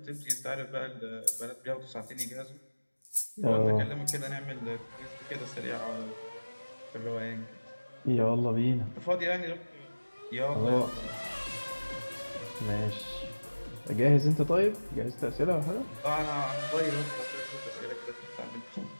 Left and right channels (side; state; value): both; inverted; correlation -1.00